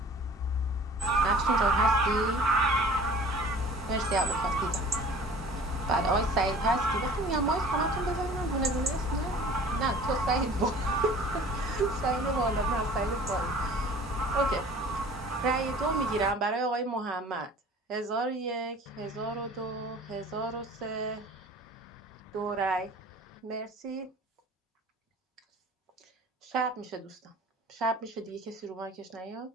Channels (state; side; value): normal; both; correlation 0.46